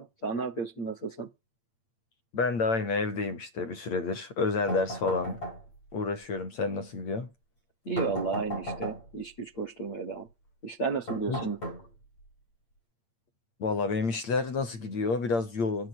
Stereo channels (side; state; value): right; late; 8.7 ms